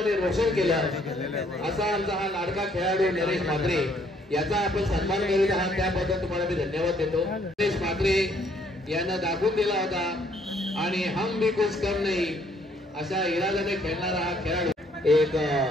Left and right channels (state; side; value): normal; both; correlation 0.66